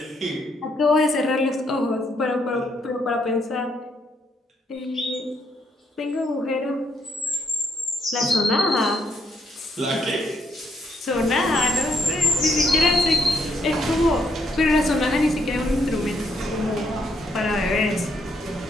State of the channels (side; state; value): both; normal; correlation 0.74